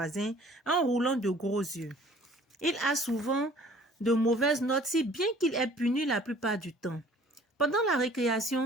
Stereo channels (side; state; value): both; normal; correlation 0.52